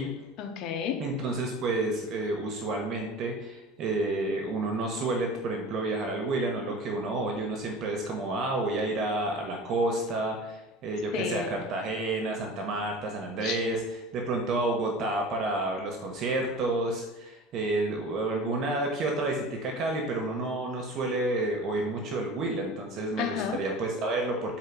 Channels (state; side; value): normal; both; correlation 0.37